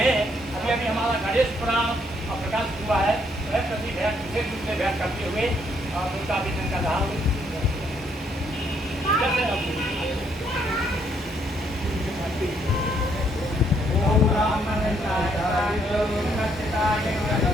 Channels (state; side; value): normal; both; correlation 0.71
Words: अभी अभी हमारा गणेश पुराण प्रकाश हुआ है, वह प्रति भेंट विशेष रूप से भेंट करते हुए उनका अभिनंदन कर रहा हूँ।